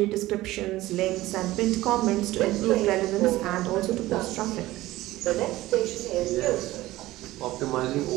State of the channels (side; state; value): left; quieter; 17.1 dB